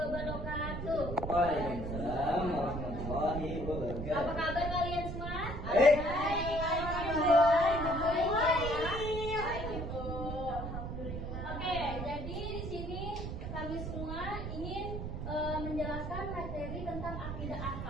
Waalaikumsalam warahmatullahi wabarakatuh. Apa kabar kalian semua? Baik. Oke, jadi di sini kami semua ingin menjelaskan materi tentang akidah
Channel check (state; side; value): noise; right; rumble, 5 dB below the sound